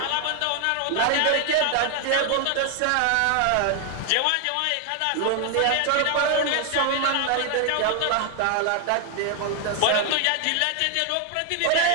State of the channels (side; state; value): both; different; correlation 0.00